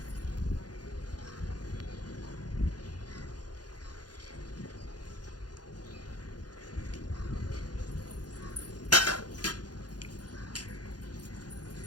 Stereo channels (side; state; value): right; late; 0.69 ms